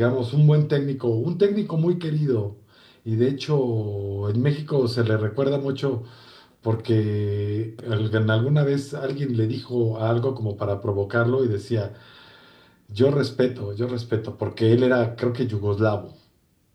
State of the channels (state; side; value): identical; both; correlation 1.00